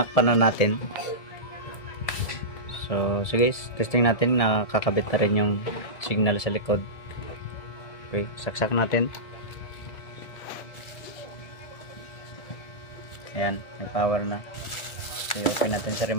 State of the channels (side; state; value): right; late; 1.7 ms